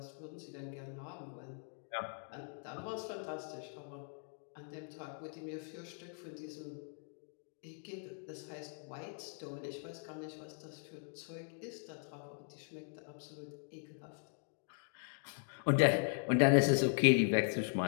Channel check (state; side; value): silent; right; 51 dB below the other